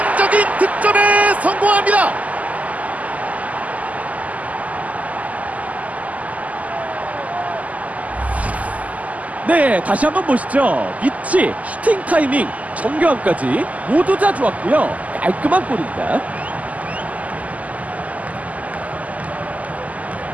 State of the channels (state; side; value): late; left; 0.074 ms